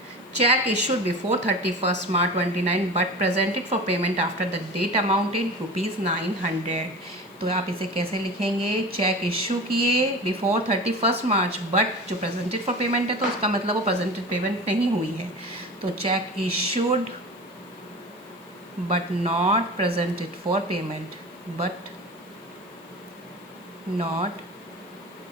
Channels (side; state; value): left; noise; hiss, 29 dB below the sound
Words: cheque issued before 31 March 29 but presented for payment after the date amount in ₹900। तो आप इसे कैसे लिखेंगे? चेक इशू किए बिफोर 31 मार्च बट जो प्रेजेंटेड फॉर पेमेंट है तो उसका मतलब वो प्रेजेंटेड पेमेंट नहीं हुई है। तो cheque issued but not presented for payment, but not